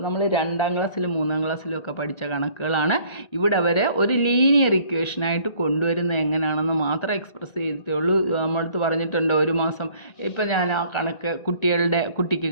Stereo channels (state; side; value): late; right; 1.9 ms